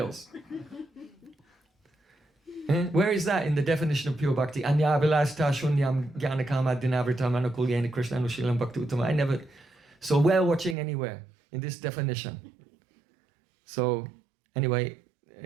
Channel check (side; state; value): left; drops out; at 10.8 s